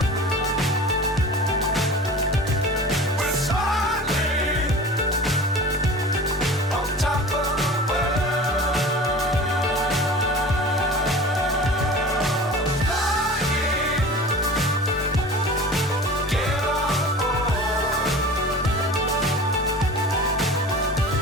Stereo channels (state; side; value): normal; both; correlation 0.38